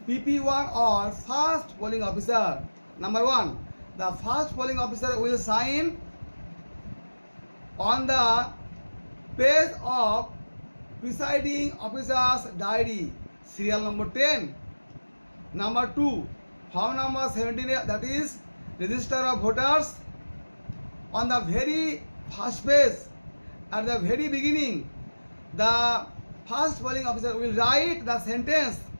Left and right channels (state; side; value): inverted; both; correlation -1.00